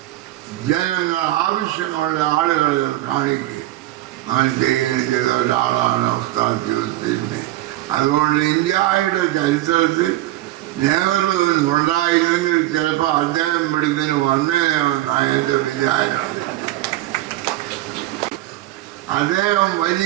ജനങ്ങൾ ആവശ്യമുള്ള ആളുകളെ കാണിക്കുക അങ്ങനെ ചെയ്യുകയും ചെയ്ത ഒരാളാണ് ഉസ്താദ് യൂസുഫ്. അതുകൊണ്ട് ഇന്ത്യയുടെ ചരിത്രത്തിൽ നെഹ്റു ഉണ്ടായിരുന്നെങ്കിൽ ചിലപ്പോൾ അദ്ദേഹം ഇവിടുന്ന് വന്നേനെന്നാണ് എൻ്റെ വിചാരം. അദ്ദേഹം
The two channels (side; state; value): left; quieter; 16.0 dB